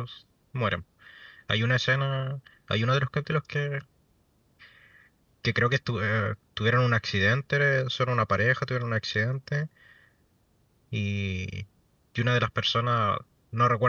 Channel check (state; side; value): identical; both; correlation 1.00